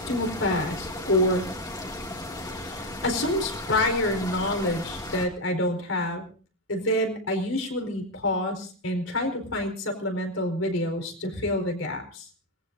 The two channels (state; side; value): normal; both; correlation 0.07